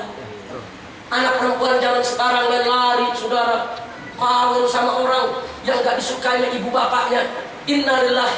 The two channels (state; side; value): identical; both; correlation 1.00